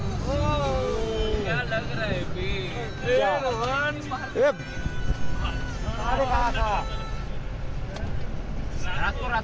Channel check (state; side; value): identical; both; correlation 1.00